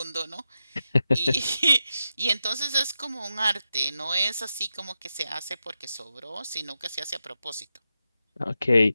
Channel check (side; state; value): both; inverted; correlation -0.89